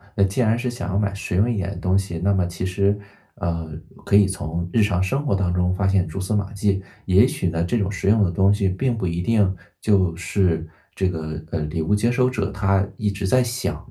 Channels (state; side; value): identical; both; correlation 1.00